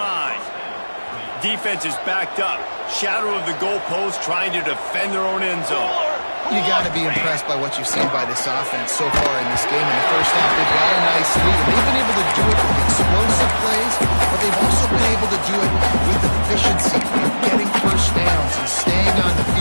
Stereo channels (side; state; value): both; inverted; correlation -1.00